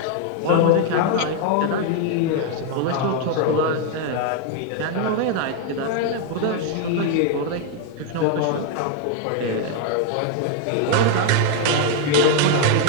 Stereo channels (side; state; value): both; different; correlation 0.01